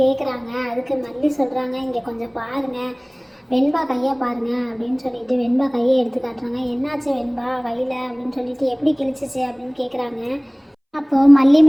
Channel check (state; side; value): identical; both; correlation 1.00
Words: கேட்குறாங்க. அதுக்கு மல்லி சொல்கிறாங்க, இங்கே கொஞ்சம் பாருங்கள், வெண்பா கையை பாருங்க அப்படின்னு சொல்லிட்டு வெண்பா கையை எடுத்து காட்டுறாங்க. என்னாச்சு வெண்பா கையில் அப்படின்னு சொல்லிட்டு எப்படி கிழிச்சிச்சு அப்படின்னு கேட்குறாங்க. அப்போது மல்லி